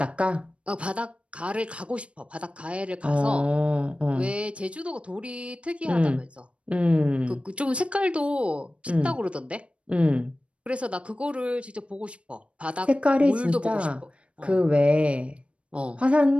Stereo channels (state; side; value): late; left; 0.061 ms